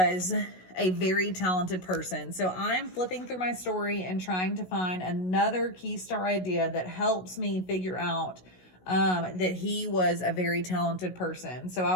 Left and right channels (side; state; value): right; late; 16 ms